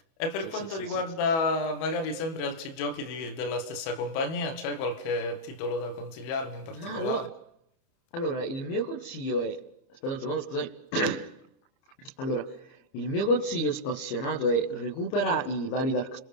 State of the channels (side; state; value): right; late; 31 ms